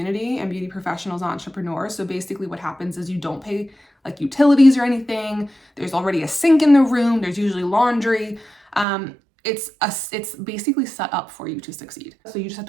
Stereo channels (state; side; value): drops out; left; at 8.8 s